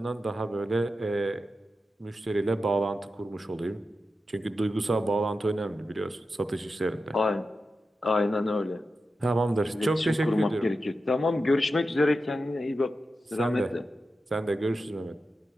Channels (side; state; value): both; normal; correlation 0.91